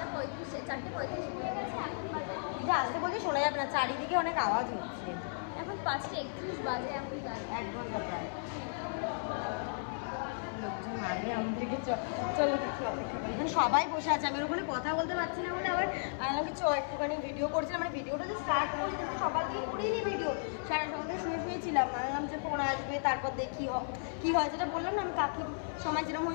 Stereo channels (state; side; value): silent; right; 55 dB below the other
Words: নিয়ে গেছে, এখন বাজে যে আসতে বলছি শোনা যাবে না, চারিদিকে অনেক আওয়াজ হচ্ছে। এখন 5:31 বাজে, এখন 1 ঘন্টা প্রায়। লোকজন আগে আমাদেরকে চলো দেখি অপেক্ষা করি। এখানে সবাই বসে আছে, আমি ওখানে কথা বলতে পারছি না বলে আবার আমাকে একটুখানি ভিডিও করছিলাম। মানে ভিডিওটা যে স্টার্ট করছি সকাল থেকে করিনি ভিডিও, সারা সকাল থেকে শুয়েছিলাম। আমি যে ফোন আসবে তারপর দেখি কী হয়, যেটা বললাম না আমি কাকির সময় যেরকম